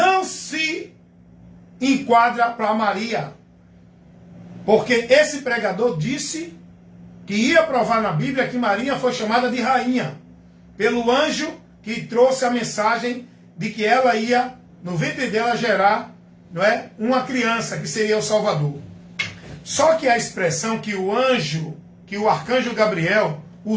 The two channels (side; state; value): both; identical; correlation 1.00